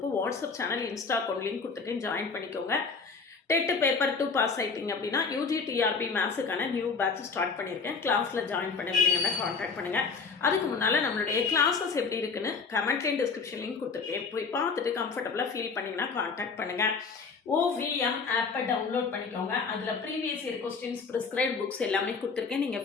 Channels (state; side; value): quieter; right; 4.9 dB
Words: WhatsApp channel, Insta account link கொடுத்துருக்கேன், ஜாயின் பண்ணிக்கோங்க. டெட் பேப்பர் 2 பாஸ் ஆகிட்டிங்க அப்படின்னா யூஜி டிஆர்பி மேத்ஸுக்கான நியூ பேட்ச் ஸ்டார்ட் பண்ணியிருக்கேன். கிளாஸில் ஜாயின் பண்ணுவீங்கன்னா காண்டாக்ட் பண்ணுங்கள். அதுக்கு முன்னால் நம்மளுடைய கிளாஸஸ் எப்படி இருக்குன்னு கமெண்ட்லேயும் டிஸ்கிரிப்ஷன் லிங்க் கொடுத்துருக்கேன், போய் பார்த்துட்டு கம்ஃபர்டபுளாக ஃபீல் பண்ணிங்கன்னா காண்டாக்ட் பண்ணுங்கள். OVM ஆப்பை டவுன்லோட் பண்ணிக்கோங்க. அதில் previous year questions, prescribed books எல்லாமே கொடுத்துருக்கேன்,